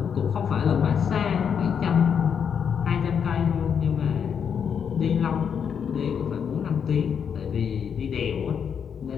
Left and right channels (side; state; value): right; quieter; 7.4 dB